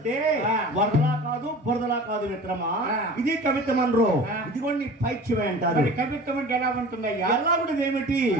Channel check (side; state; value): both; normal; correlation 0.40